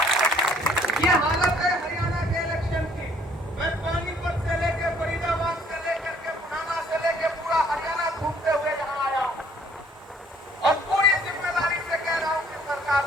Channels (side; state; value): both; normal; correlation 0.60